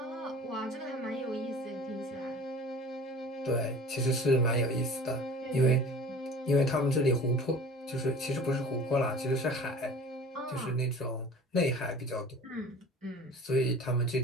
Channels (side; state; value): both; normal; correlation 0.42